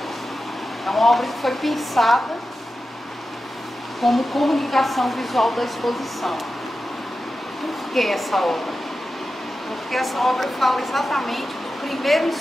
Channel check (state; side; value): normal; both; correlation 0.92